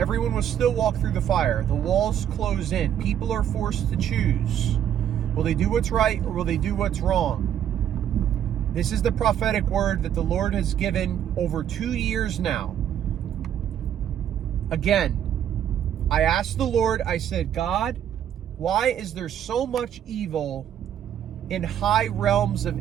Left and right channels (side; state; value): left; quieter; 10.0 dB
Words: will still walk through the fire. The walls close in. People are forced to choose. Will they do what's right or will they do what's wrong? This is the prophetic word that the Lord has given over 2 years now. Again, I asked the Lord, I said, God, why is there so much evil in high realms